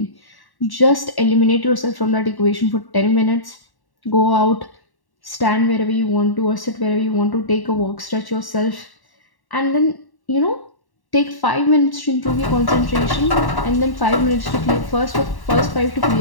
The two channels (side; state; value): right; late; 1.1 ms